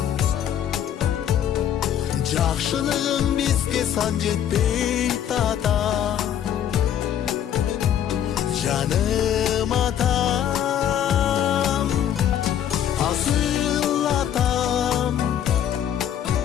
Жақшылығың бізге сан жетпей тата. Жаным атам, асыл атам,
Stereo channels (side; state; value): right; quieter; 10.0 dB